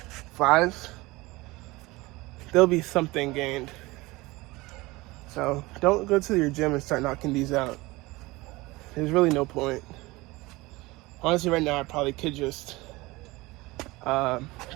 flies, there'll be something gained. So don't go to your gym and start knocking these out. There's really no point. Honestly, right now I probably could just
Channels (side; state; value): left; quieter; 21.6 dB